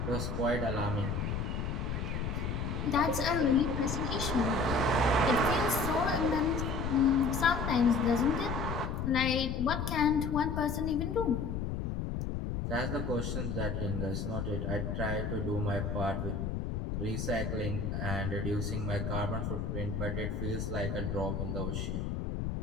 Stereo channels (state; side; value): noise; left; rumble, 2 dB below the sound